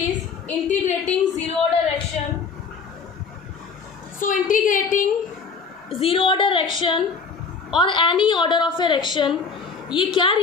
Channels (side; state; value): right; quieter; 5.2 dB